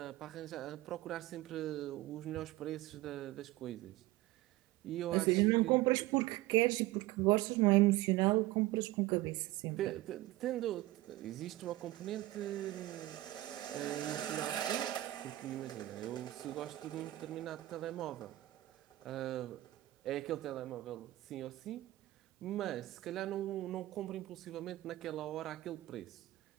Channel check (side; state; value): left; quieter; 17.3 dB